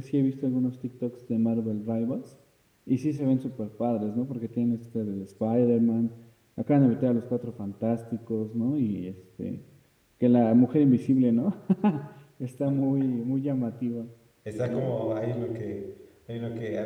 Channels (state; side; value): identical; both; correlation 1.00